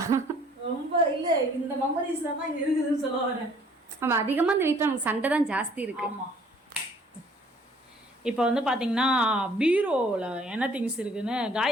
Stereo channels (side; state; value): both; normal; correlation 0.58